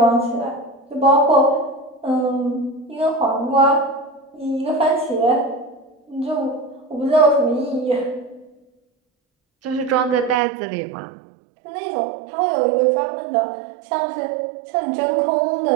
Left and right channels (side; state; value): left; drops out; at 10.4 s